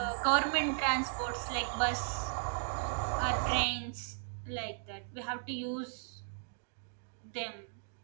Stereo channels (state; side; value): silent; left; digital silence